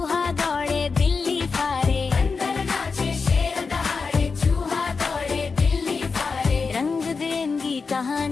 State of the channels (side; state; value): right; quieter; 4.8 dB